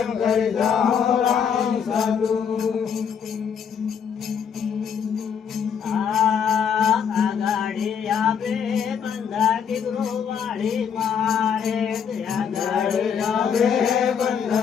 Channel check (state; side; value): quieter; right; 7.3 dB